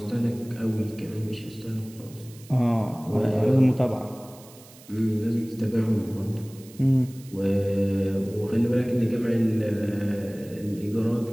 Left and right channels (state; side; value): noise; right; hiss, 22 dB below the sound